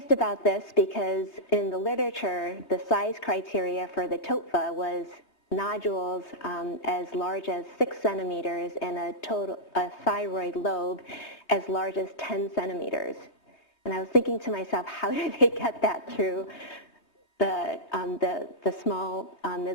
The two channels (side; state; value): right; late; 2.9 ms